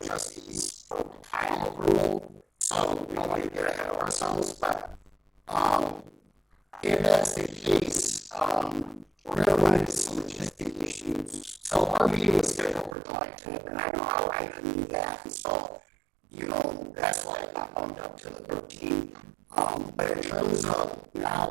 trustees for final approval, so we don't want to get ahead of ourselves, but if that's the case, we're gonna run into some logistic issues. So our meeting was scheduled for July 10th, and I know how I can do that, and so, that's why I got bumped up to the 13th. But in terms of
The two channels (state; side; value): drops out; left; at 13.0 s